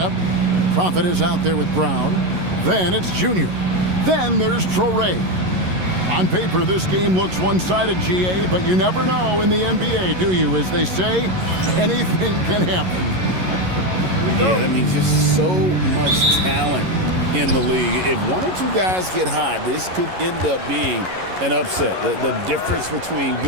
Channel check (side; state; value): left; late; 11 ms